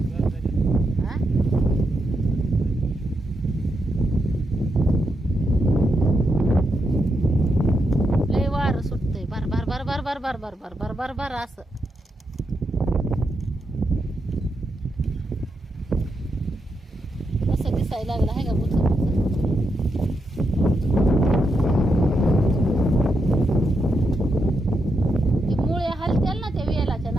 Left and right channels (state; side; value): normal; both; correlation 0.83